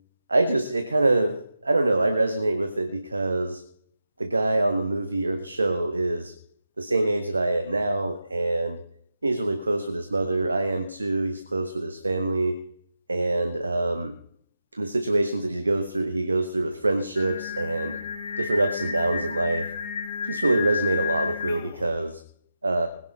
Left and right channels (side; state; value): both; inverted; correlation -0.90